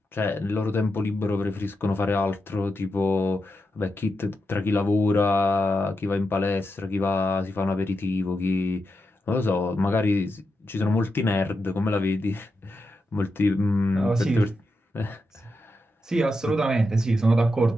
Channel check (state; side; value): normal; both; correlation 0.87